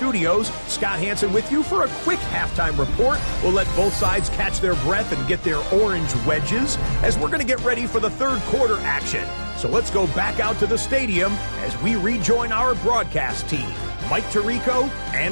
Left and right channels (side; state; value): both; inverted; correlation -1.00